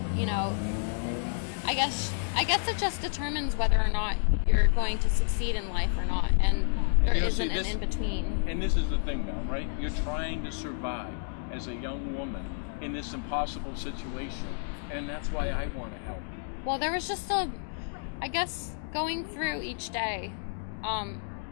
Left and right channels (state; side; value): silent; right; digital silence